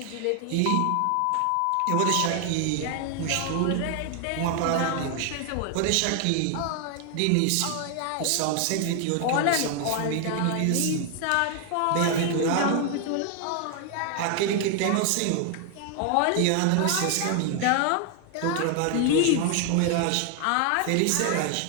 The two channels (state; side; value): different; both; correlation 0.00